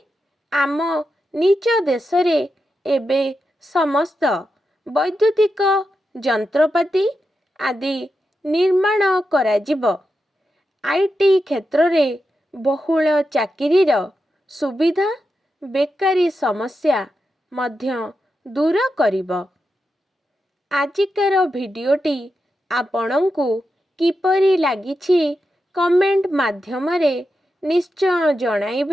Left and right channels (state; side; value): normal; both; correlation 0.88